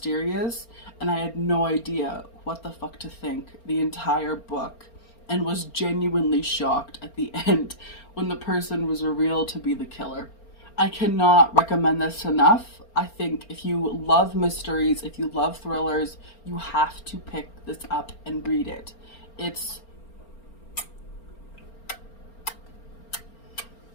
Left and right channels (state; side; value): late; right; 4.4 ms